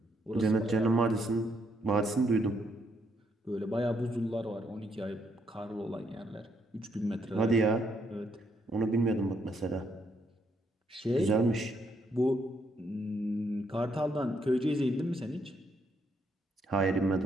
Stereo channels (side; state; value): both; normal; correlation 0.74